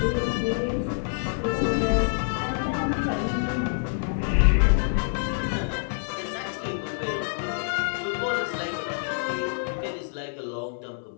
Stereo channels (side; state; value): right; silent; 59 dB below the other